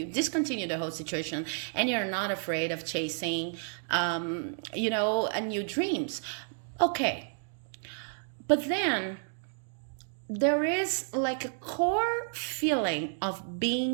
discontinue the whole situation, and you're not afraid of chasing, a new dreams. Okay, but then there is like a core feeling of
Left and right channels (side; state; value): left; silent; digital silence